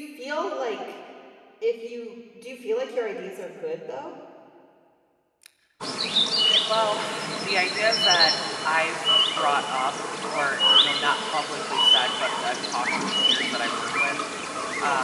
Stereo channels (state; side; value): identical; both; correlation 1.00